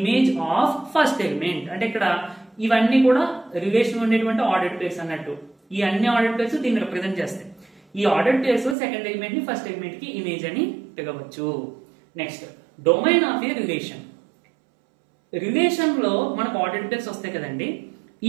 of first element. అంటే ఇక్కడ ఇవన్నీ కూడా రిలేషన్ ఉండేటువంటి ఆర్డర్డ్ పేర్స్ అన్నట్టు. ఈ అన్ని ఆర్డర్డ్ పేర్స్ దీన్ని రిప్రజెంట్ చేస్తాయి. ఈ ఆర్డర్డ్ పేర్స్ సెకండ్ ఎలిమెంట్ ని ఫస్ట్ ఎలిమెంట్ కి ఇమేజ్ అని పిలవచ్చు. Next, domain of A relation. Relation లో మనకు ఆర్డర్డ్ పేర్స్ వస్తాయి కదండి.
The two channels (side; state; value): left; drops out; at 8.8 s